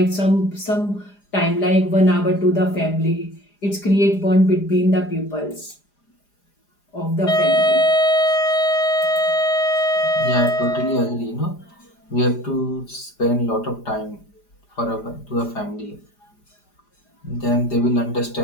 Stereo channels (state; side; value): late; right; 4.9 ms